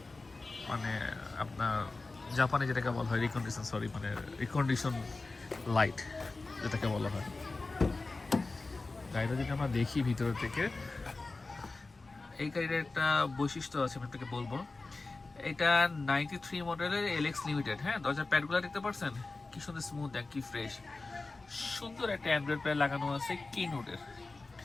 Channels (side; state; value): right; quieter; 3.5 dB